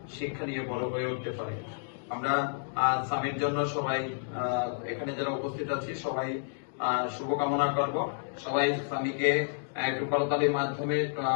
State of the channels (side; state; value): right; silent; digital silence